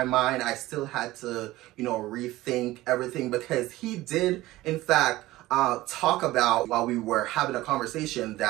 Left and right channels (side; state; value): left; quieter; 17.5 dB